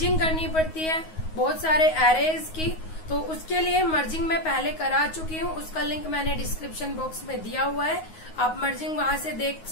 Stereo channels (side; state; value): right; late; 9.4 ms